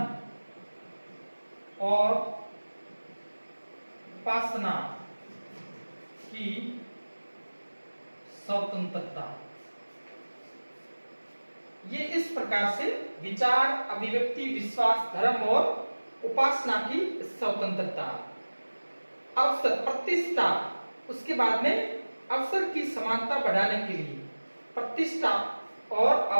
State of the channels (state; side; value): inverted; both; correlation -1.00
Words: और उपासना की स्वतंत्रता। ये इस प्रकार से विचार, अभिव्यक्ति, विश्वास, धर्म और उपासना की स्वतंत्रता। अवसर, प्रतिष्ठा, उसके बाद में अवसर की समानता बढ़ाने के लिए प्रतिष्ठा और